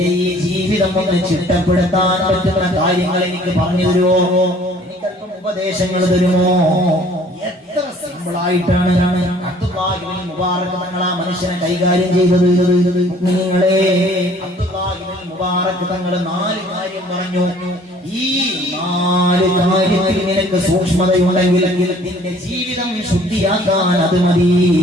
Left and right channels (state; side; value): normal; both; correlation 0.55